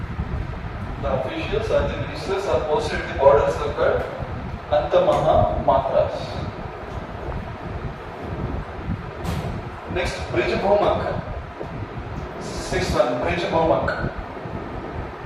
The officials or the ministers are posted at the borders of God. Anta Mahamatras. Next, Brij Bhumak. Sixth one, Brij Bhumak.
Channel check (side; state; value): both; identical; correlation 1.00